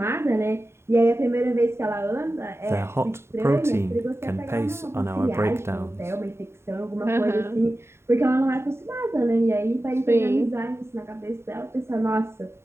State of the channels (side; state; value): left; late; 0.12 ms